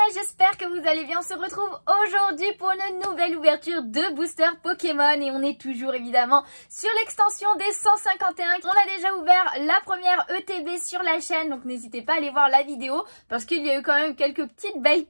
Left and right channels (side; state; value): both; inverted; correlation -1.00